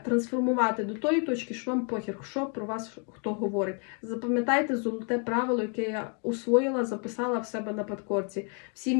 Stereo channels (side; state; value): right; quieter; 39.1 dB